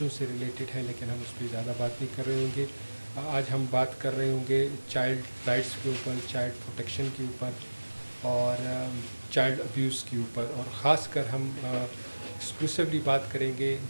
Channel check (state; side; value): inverted; both; correlation -1.00